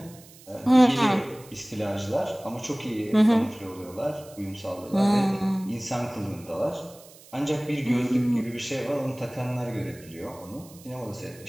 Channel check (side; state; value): right; noise; hiss, 22 dB below the sound